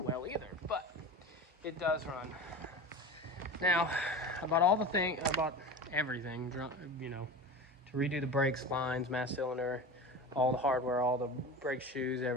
well either, but it does run. Now, I bought everything, you know, to redo the brakes, lines, mass cylinder, all the hardware, all the brake shoes,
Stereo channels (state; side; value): normal; both; correlation 0.30